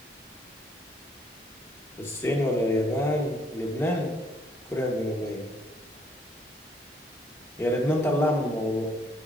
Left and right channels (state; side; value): normal; both; correlation 0.67